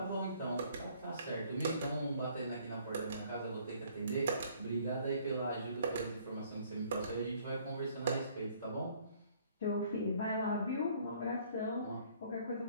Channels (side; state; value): both; inverted; correlation -0.60